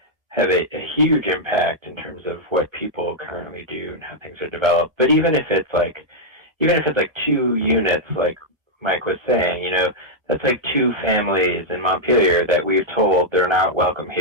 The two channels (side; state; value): left; late; 1.3 ms